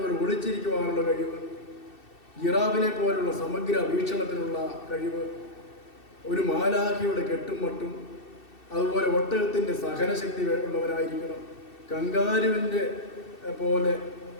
ഒളിച്ചിരിക്കുവാനുള്ള കഴിവ്, ജിറാഫിനെ പോലുള്ള സമഗ്ര വീക്ഷണത്തിനുള്ള കഴിവ്, ഒരു മാലാഖിയുടെ കെട്ടും മട്ടും, അതുപോലെ ഒട്ടകത്തിൻ്റെ സഹനശക്തി ഉള്ളവരായിരിക്കണം. കങ്കാരുവിൻ്റെ പോലെ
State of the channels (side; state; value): right; late; 2.7 ms